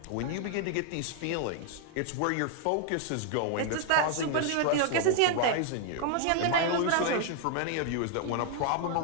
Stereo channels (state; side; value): different; both; correlation 0.00